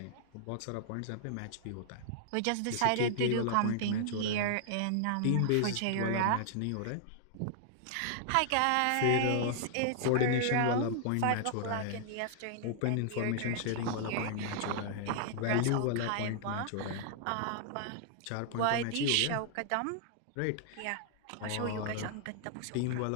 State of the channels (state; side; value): different; both; correlation -0.01